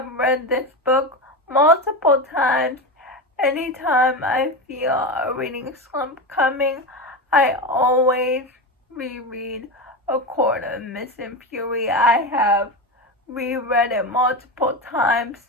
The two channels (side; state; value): both; normal; correlation 0.19